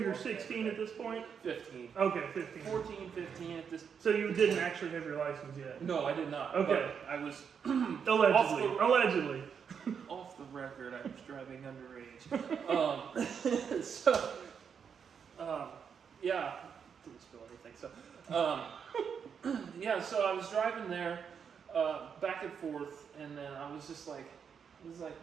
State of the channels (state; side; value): quieter; left; 7.0 dB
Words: walk 16 at this point? 15. Okay, 15. 14, 15 at this. So you didn't actually have your license yet? No, I did not. Okay. But I was Allegedly. off the record. I was driving underage. Yeah, didn't spill anything. So, yeah. So I was driving there. Back and forth, and then I was like,